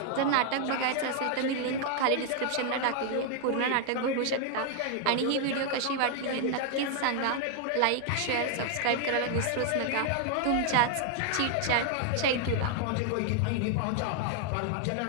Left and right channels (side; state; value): both; different; correlation 0.00